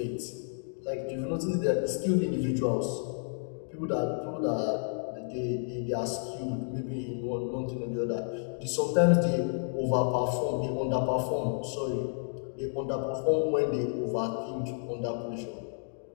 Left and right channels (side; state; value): right; silent; digital silence